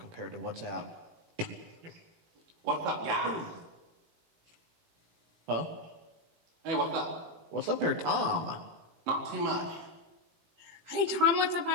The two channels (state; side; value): late; left; 18 ms